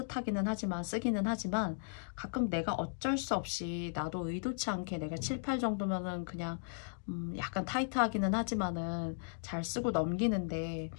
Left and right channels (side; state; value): right; silent; digital silence